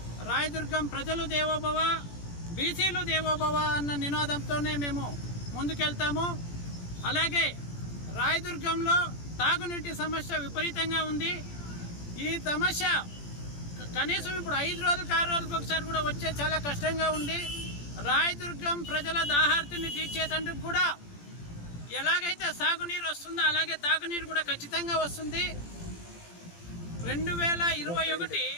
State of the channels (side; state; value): right; late; 17 ms